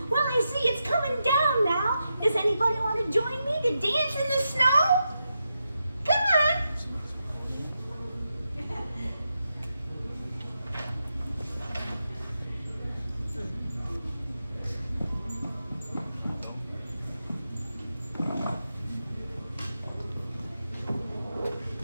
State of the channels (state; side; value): inverted; both; correlation -0.87